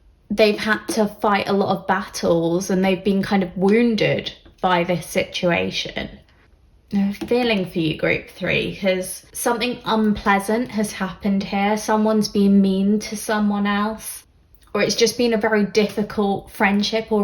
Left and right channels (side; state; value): both; identical; correlation 1.00